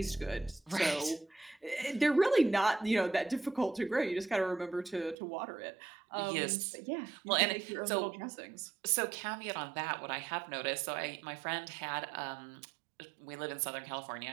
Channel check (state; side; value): drops out; left; at 5.2 s